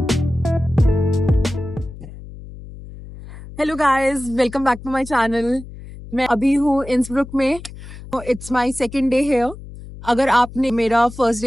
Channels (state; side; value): noise; left; hum, 15 dB below the sound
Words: Hello guys, welcome back to my channel. मैं अभी हूँ इंसब्रुक में। It's my second day here. अगर आपने मेरा फर्स्ट